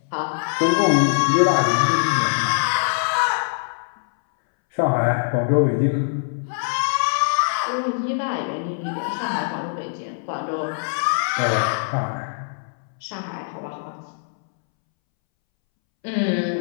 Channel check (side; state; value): right; silent; 64 dB below the other